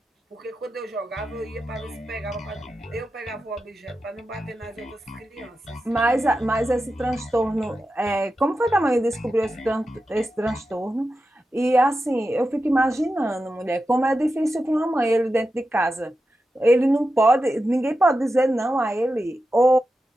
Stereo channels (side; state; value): both; normal; correlation 0.91